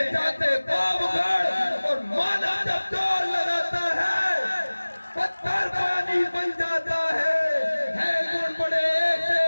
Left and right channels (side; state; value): both; inverted; correlation -1.00